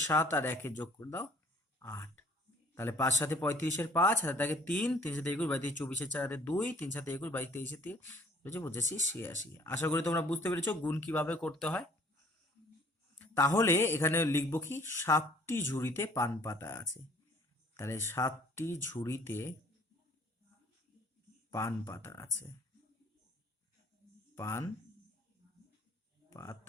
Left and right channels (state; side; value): normal; both; correlation 0.55